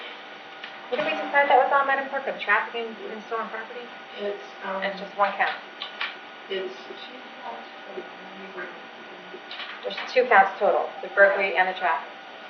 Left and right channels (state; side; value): identical; both; correlation 1.00